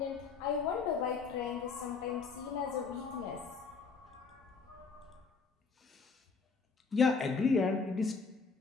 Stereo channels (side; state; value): right; quieter; 4.9 dB